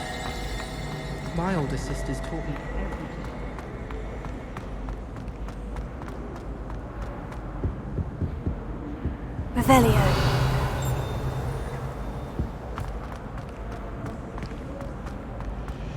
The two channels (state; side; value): identical; both; correlation 1.00